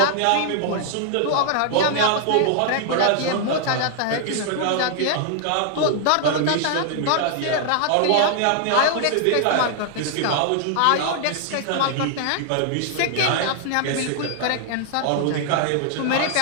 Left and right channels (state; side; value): different; both; correlation 0.00